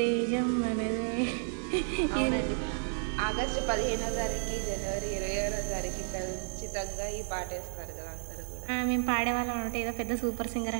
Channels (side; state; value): left; silent; digital silence